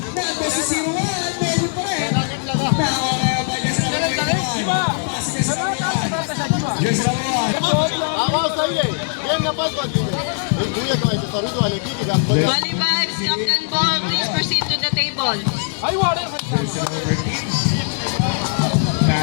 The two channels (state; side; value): silent; right; 65 dB below the other